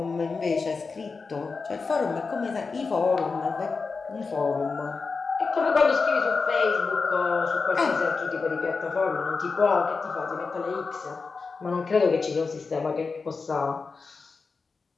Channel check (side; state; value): right; quieter; 4.5 dB